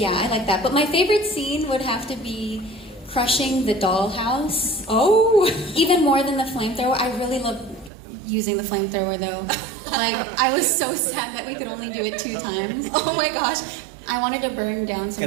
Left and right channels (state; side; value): drops out; left; at 7.9 s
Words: like that. But my favorite scene would have to be crushing the dollhouse. Oh! Even more than the flamethrower. I really love using the flamethrower though. I was so sad that we could only do it 2 times. Oh my gosh. I wanted to burn down